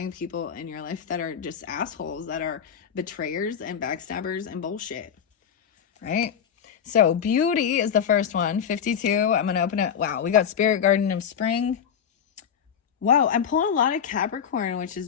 people in your life that are just assholes, that are betrayers and backstabbers and bullshit, right? So beauty is the first one, 52. I'm going to open it. Wow, we got Spirit Garden of Spring. Wow, I'm pulling a lot of Capricorn, which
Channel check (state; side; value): quieter; right; 8.0 dB